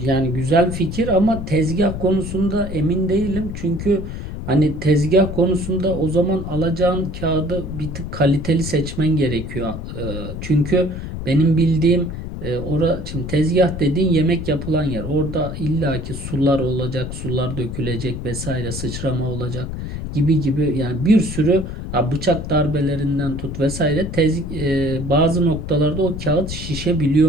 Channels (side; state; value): left; noise; rumble, 7 dB below the sound